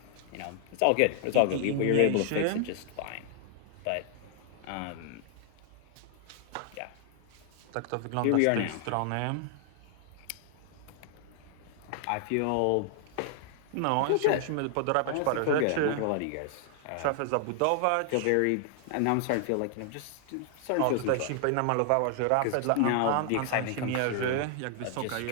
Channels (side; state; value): both; different; correlation 0.00